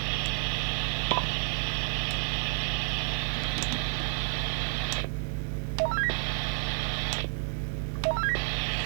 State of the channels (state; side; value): silent; left; digital silence